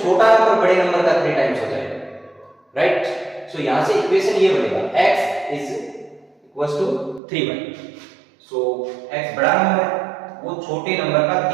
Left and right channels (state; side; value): drops out; left; at 7.2 s